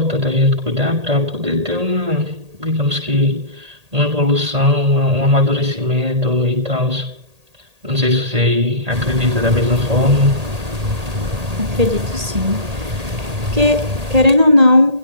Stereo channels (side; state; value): left; late; 1.8 ms